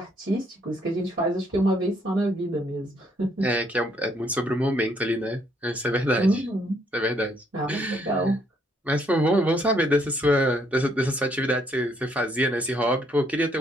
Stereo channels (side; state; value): both; normal; correlation 0.69